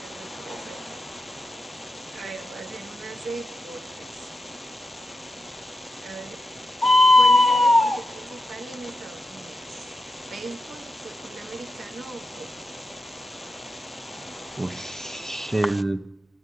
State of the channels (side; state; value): both; normal; correlation 0.89